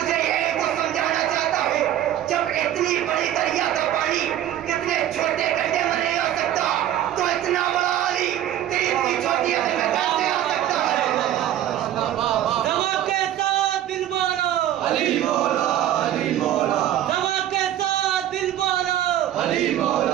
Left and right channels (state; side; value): quieter; left; 12.1 dB